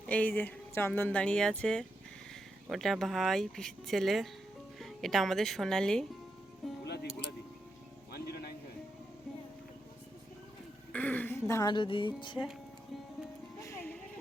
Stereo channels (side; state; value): left; noise; hum, 30 dB below the sound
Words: এই যে চন্দন দাঁড়িয়ে আছে, ওটা ভাই পিসির ছেলে, এটা আমাদের সোনালি। ধান রুদি দিচ্ছে।